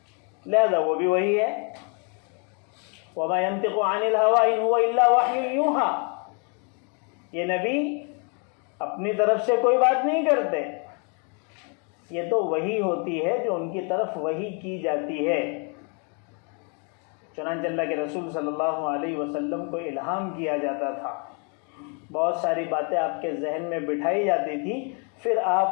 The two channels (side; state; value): right; quieter; 37.1 dB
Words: لہذا وہ بھی وہی ہے۔ وَمَا يَنطِقُ عَنِ الْهَوَىٰ إِنْ هُوَ إِلَّا وَحْيٌ يُوحَىٰ۔ یہ نبی اپنی طرف سے کوئی بات نہیں کرتے، یہ تو وحی ہوتی ہے جو ان کی طرف وحی کی جاتی ہے۔ چنانچہ اللہ کے رسول صلی اللہ علیہ وسلم کو الہام کیا جاتا تھا، بہت ساری باتیں آپ کے ذہن میں بٹھائی جاتی تھی، پھر